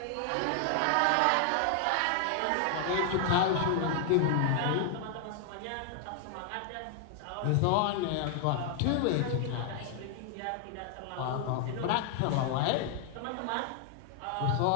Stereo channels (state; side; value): different; both; correlation 0.00